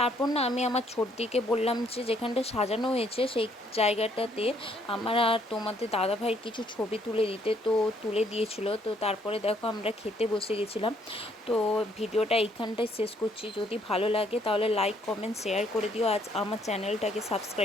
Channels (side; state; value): both; normal; correlation 0.67